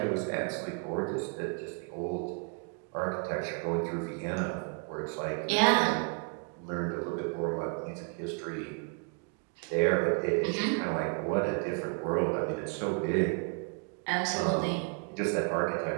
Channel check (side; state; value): left; quieter; 39.1 dB